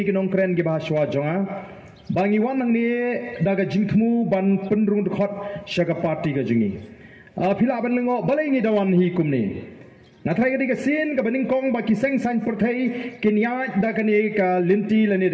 kinong kren gi bahaswa jonga bangi wan nang ni da ka jingkhmu ban penrung khot shaka party ka jingi phila ban lengo balai ngi dawan hi kumni nathai ka sin ka baning kong ba kiseng san perthai kinya da ka ni ka linti lani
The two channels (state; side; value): identical; both; correlation 1.00